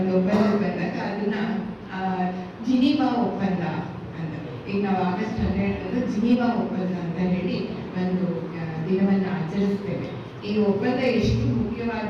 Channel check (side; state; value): both; identical; correlation 1.00